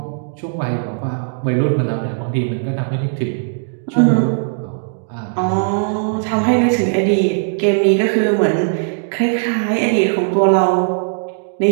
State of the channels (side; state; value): left; silent; digital silence